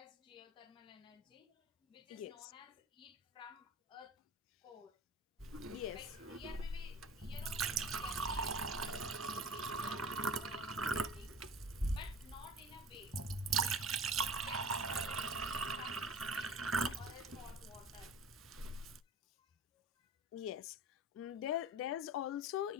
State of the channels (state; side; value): normal; both; correlation 0.39